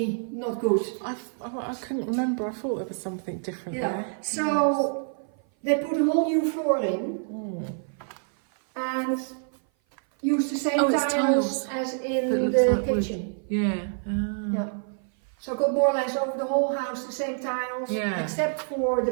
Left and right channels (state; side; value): silent; left; 56 dB below the other